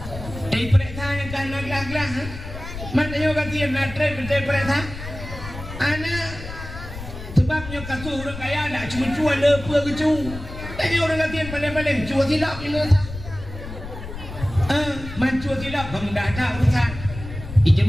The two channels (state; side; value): noise; left; rumble, 11 dB below the sound